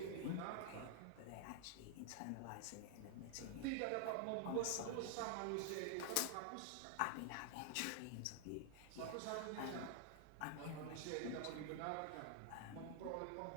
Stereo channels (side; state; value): both; different; correlation 0.00